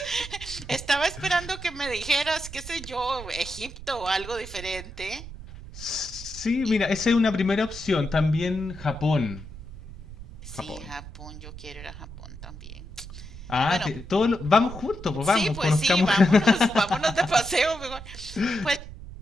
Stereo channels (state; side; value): noise; right; rumble, 13 dB below the sound